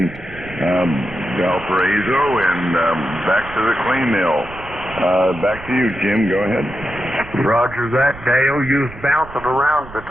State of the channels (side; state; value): right; noise; rumble, 17 dB below the sound